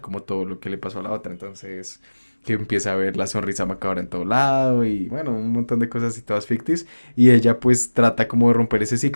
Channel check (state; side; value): inverted; both; correlation -1.00